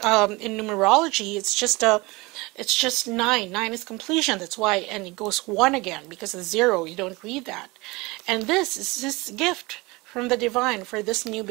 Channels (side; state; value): left; quieter; 23.8 dB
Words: numerology it's just 9. 9 is completion. That's why, and it goes 1 again because of 0. You don't read that. And this is this gift from the divine for this new